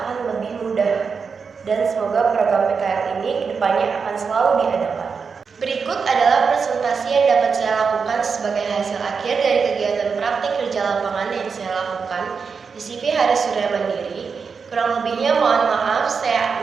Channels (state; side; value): quieter; left; 5.5 dB